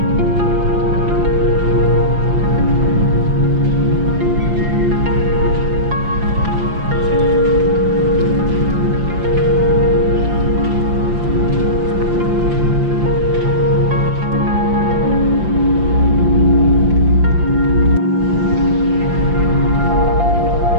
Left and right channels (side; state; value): left; late; 5.8 ms